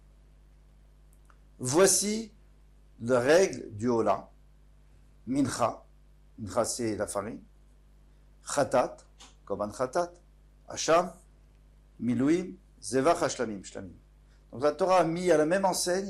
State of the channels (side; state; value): both; identical; correlation 1.00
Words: Voici la règle du Ola. Mincha. Mincha, c'est la farine. Chatat, Koban Chatat. Hasham, Milouim, Zevach Shlamim. Donc la Torah a mis à la même